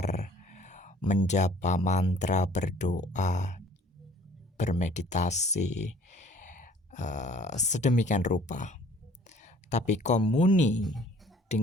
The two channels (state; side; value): normal; both; correlation 0.54